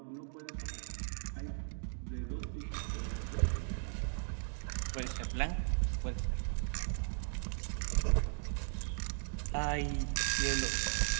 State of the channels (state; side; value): silent; left; 53 dB below the other